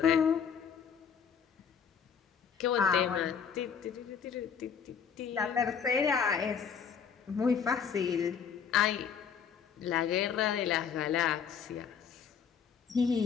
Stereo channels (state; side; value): quieter; right; 7.1 dB